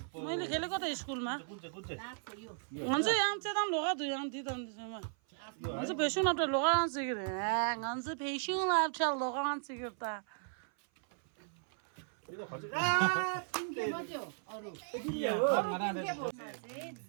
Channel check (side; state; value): left; silent; 54 dB below the other